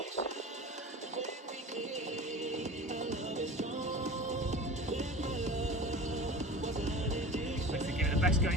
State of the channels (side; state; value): both; normal; correlation 0.35